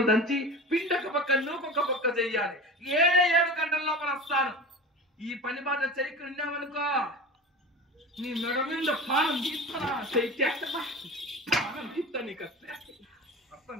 దంచి పిండొక పక్క నూకొక పక్క చెయ్యాలి. 7 గంటల లోపల వస్తాను. ఈ పని బాధ చెయ్యికి ఉన్నామనుకో నీ మెడ మీద పానం తీస్తానా పానం తీస్తా నీకు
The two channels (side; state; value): both; normal; correlation 0.31